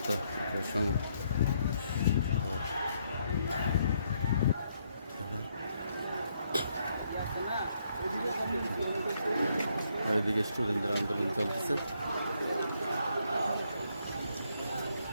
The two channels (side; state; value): both; inverted; correlation -0.74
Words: এদিকে স্টুডেন্টদের আন্দোলন চলতেছে।